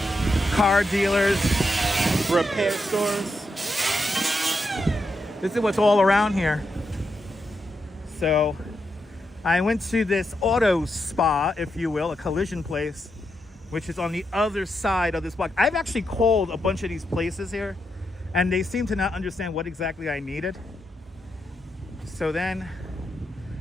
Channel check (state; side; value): normal; both; correlation 0.83